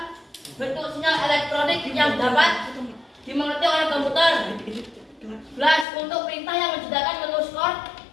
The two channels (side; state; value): right; drops out; at 5.9 s